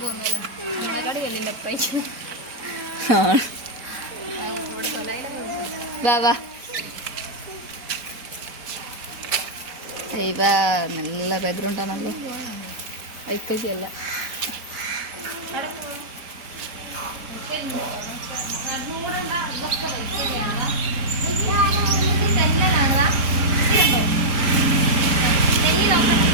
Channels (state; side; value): late; left; 5.0 ms